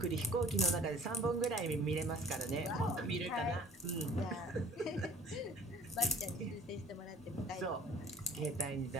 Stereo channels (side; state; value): both; normal; correlation 0.50